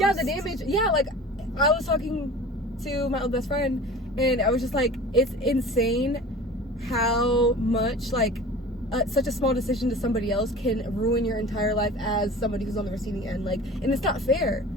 the damage. Yeah, like I was talking to my old best friend, and I was just like, it's insane how much like such a small decision to somebody else can ruin your entire life as somebody who's on the receiving end. Like, and it's not fair,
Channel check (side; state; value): both; normal; correlation 0.40